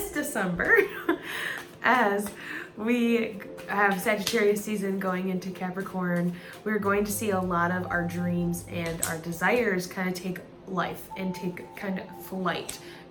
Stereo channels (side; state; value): both; identical; correlation 1.00